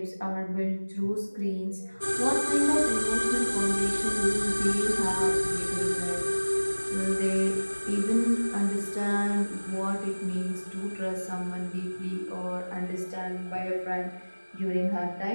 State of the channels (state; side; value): inverted; both; correlation -1.00